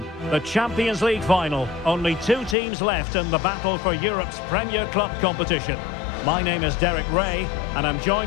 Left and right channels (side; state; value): right; drops out; at 2.6 s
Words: The Champions League final. Only 2 teams left in the battle for Europe's Premier Club competition. My name is Derek Ray, and I'm